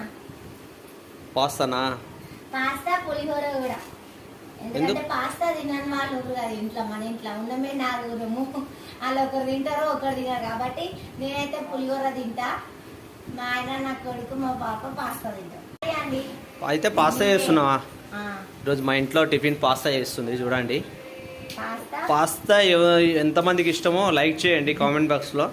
పాస్తానా? పాస్తా పులిహోర కూడా. ఎందుకంటే పాస్తా తినని వాళ్ళు కదా ఇంట్లో, మన ఇంట్లో ఉన్నమే నాలుగురము. వాళ్ళు ఒకరు తింటారో ఒకరు తినరు కాబట్టి నేనైతే పులిహోర తింటా, మా ఆయన నా కొడుకు మా పాప పాస్తా తింటాం అండి. అయితే పాస్తా చేస్తున్నావా? ఈరోజు మా ఇంట్లో టిఫిన్ పాస్తా చేస్తుంది చూడండి. పాస్తా ఎంతమందికి ఇష్టమో లైక్ చేయండి కామెంట్ బాక్స్లో.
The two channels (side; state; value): both; identical; correlation 1.00